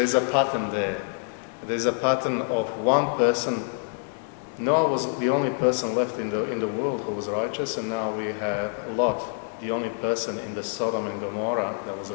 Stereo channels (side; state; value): right; silent; digital silence